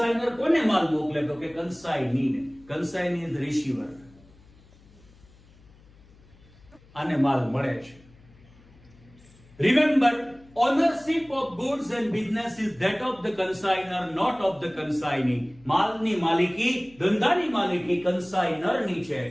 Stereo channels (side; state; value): left; noise; hum, 26 dB below the sound